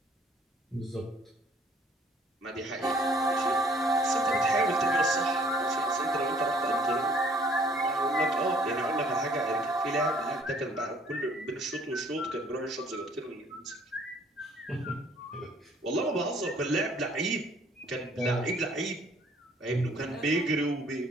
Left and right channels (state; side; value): normal; both; correlation 0.58